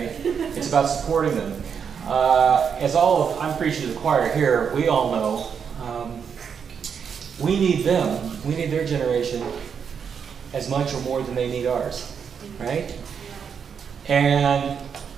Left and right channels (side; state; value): left; quieter; 7.0 dB